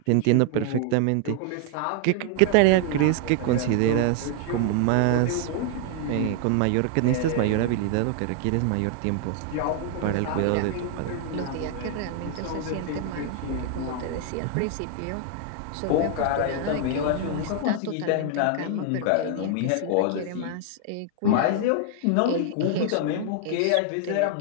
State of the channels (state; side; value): different; both; correlation 0.00